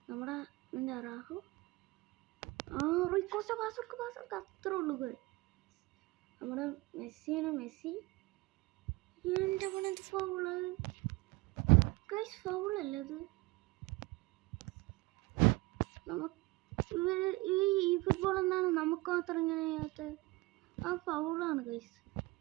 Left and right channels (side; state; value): left; quieter; 22.3 dB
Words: നമ്മുടെ എന്താ റാഹു റൂയിക്കോസ്റ്റ പാസ് അത്രേ ഉള്ളൂ. നമ്മുടെ മെസ്സിയാണ്, മെസ്സി എൻ്റെ പണത് ഫൗള് ഗൈസ്, ഫൗളല്ലേ അത്. ഈ ഫുട്ബോൾ എന്താണ് നമുക്ക് മാത്രം ഇങ്ങനെ ചെയ്യാത്തത്? ആ ഫൗളാണ് ഗൈസ്.